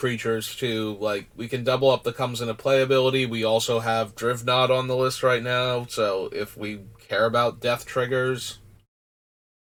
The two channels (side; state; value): both; identical; correlation 1.00